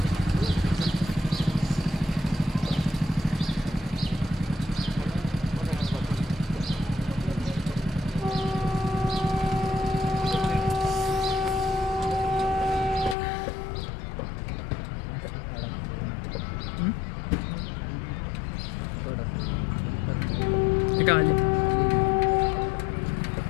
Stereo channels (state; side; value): drops out; right; at 13.2 s